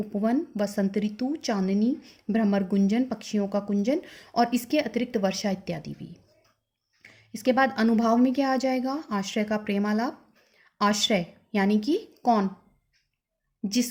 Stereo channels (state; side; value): identical; both; correlation 1.00